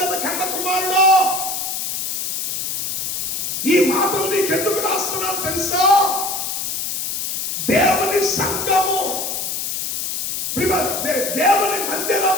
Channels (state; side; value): noise; left; hiss, 2 dB below the sound